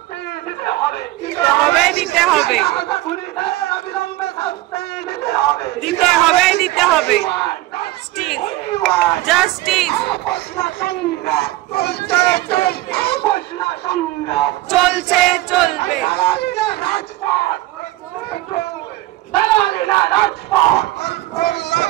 দিতে হবে দিতে হবে দিতে হবে জাস্টিস চলছে চলবে।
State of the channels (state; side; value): quieter; left; 17.3 dB